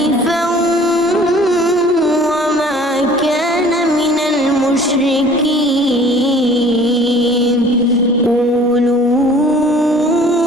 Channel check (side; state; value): both; normal; correlation 0.50